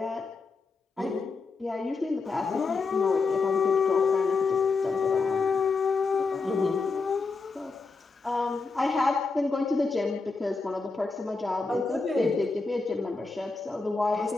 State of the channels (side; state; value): right; quieter; 4.1 dB